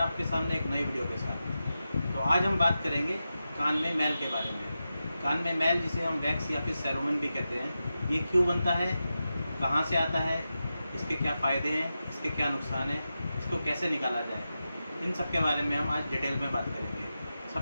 आपके सामने एक नई वीडियो के साथ। तो आज हम बात करेंगे कान में मैल के बारे में। कान में मैल जिसे हम वैक्स या फिर सेरोमन भी कहते हैं, ये क्यों बनता है, कहाँ से आता है, इसके क्या फ़ायदे हैं, इसके क्या नुकसान हैं, इसको कैसे निकाला जाए, इन सब के बारे में हम आज डिटेल में बात करेंगे।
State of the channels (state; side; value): inverted; both; correlation -0.91